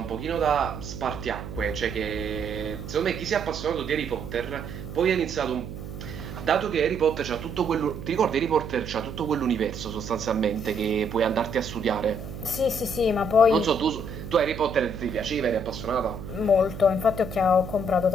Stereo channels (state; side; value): noise; right; hum, 10 dB below the sound